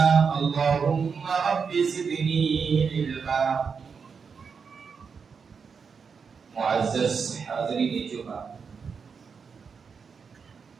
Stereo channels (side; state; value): left; quieter; 5.8 dB